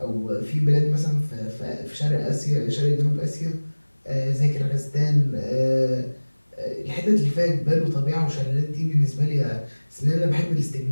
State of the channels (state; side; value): inverted; both; correlation -1.00